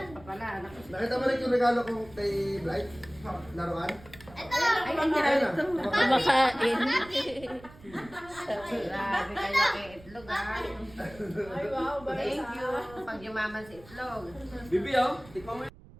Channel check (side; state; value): right; noise; rumble, 21 dB below the sound